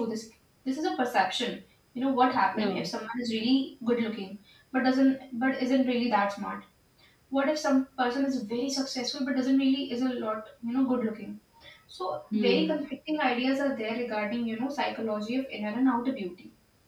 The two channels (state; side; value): identical; both; correlation 1.00